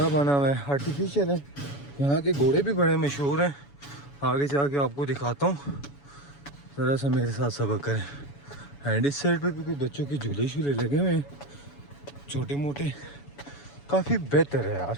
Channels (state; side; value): late; right; 7.1 ms